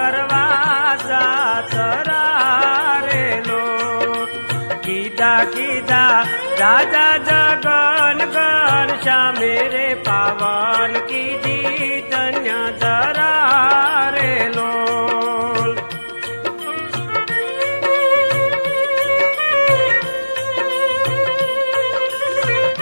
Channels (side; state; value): both; inverted; correlation -1.00